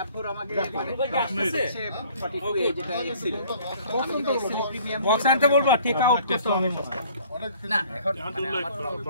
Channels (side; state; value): both; inverted; correlation -0.54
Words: বক্স আনতে বলবো, টেক আউট করতে হবে।